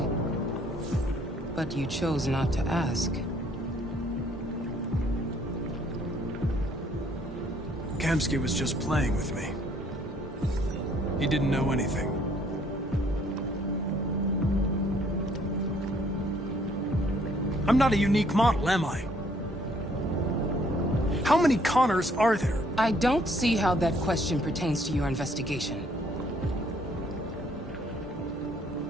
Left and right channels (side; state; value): both; normal; correlation 0.63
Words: But you chose not to ask. Kamsky was just playing with me. He didn't know anything. I'm not a unique model, am I? How many Connors are there? I don't see how that question pertains to your investigation.